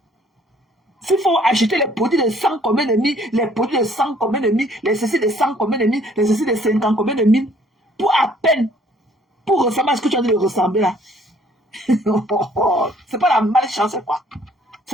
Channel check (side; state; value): both; normal; correlation 0.60